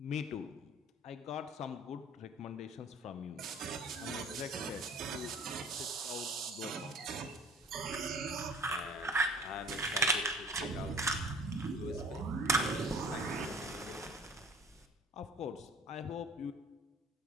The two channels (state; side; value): normal; both; correlation 0.47